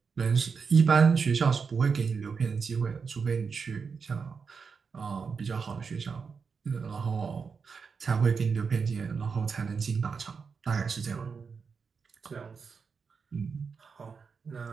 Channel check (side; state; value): left; quieter; 5.5 dB